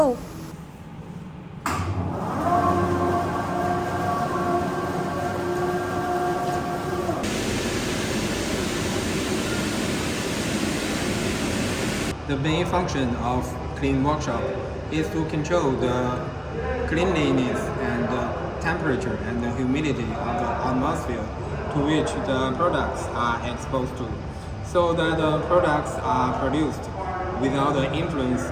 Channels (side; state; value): both; identical; correlation 1.00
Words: The main function of clean workshop is to control the cleanliness and the temperature and the humidity of the atmosphere to which the products are exposed to, so that the products are produced without the influence